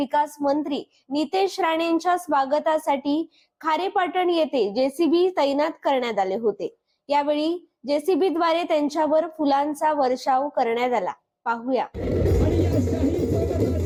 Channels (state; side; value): identical; both; correlation 1.00